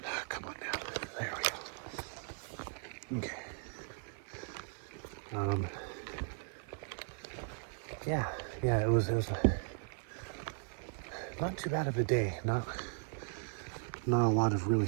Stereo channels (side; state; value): left; silent; 53 dB below the other